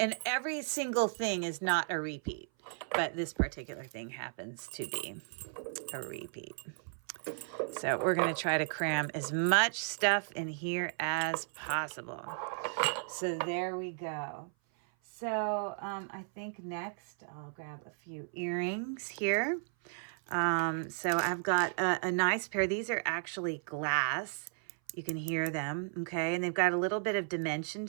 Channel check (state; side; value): silent; left; 55 dB below the other